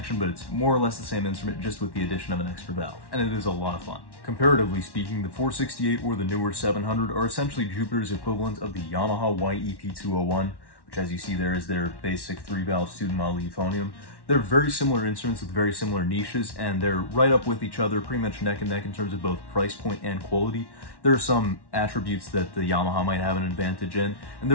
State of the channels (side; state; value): right; late; 1.1 ms